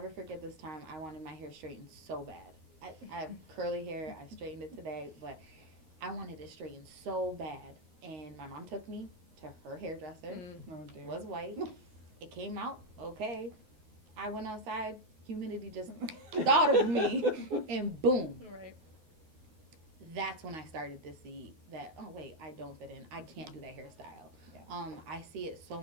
forget this time I wanted my hair straightened so bad. I have curly hair. I straightened it today, but I wanted it straightened so bad. And my mom took me to her hairdresser. Oh, dear. Was white. It came out okay. I went outside. humidity just thought of me, and boom. Right. That's when I started to see that, oh wait, I don't fit in. I can't do that hairstyle. Yeah. I see it so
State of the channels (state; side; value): late; left; 9.4 ms